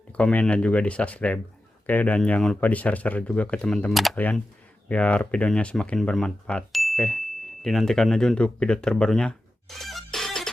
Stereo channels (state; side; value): normal; both; correlation 0.92